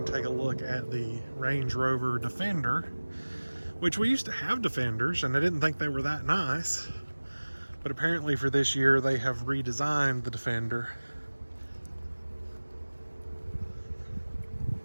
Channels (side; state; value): both; inverted; correlation -1.00